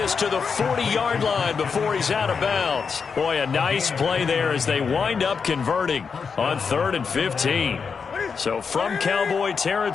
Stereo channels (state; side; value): quieter; right; 5.7 dB